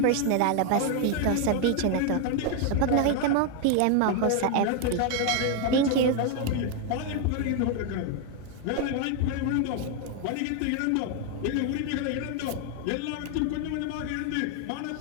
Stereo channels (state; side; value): different; both; correlation 0.01